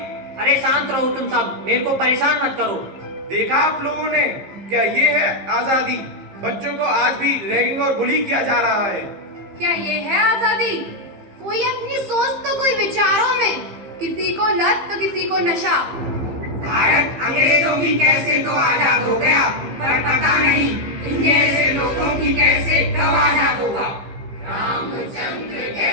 अरे शांत रहो तुम सब, मेरे को परेशान मत करो। देखा आप लोगों ने, क्या ये है आजादी? बच्चों को आज भी रैगिंग और बुली किया जा रहा है। क्या ये है आजादी? कोई अपनी सोच तो कोई विचारों में, किसी को लत तो किसी को नशा। भारत अंग्रेजों की कैसे तो आजाद हो गया, पर पता नहीं इन जैसे लोगों की कैसे कब आजाद होगा। रामचंद्र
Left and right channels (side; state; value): left; late; 15 ms